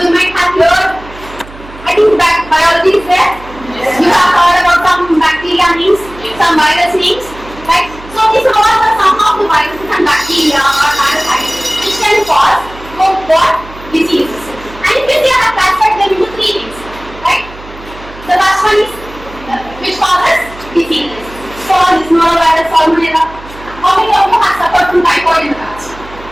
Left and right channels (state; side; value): noise; right; hum, 18 dB below the sound